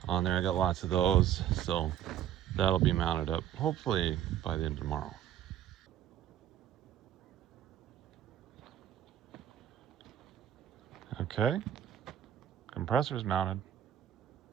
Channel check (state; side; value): quieter; left; 10.8 dB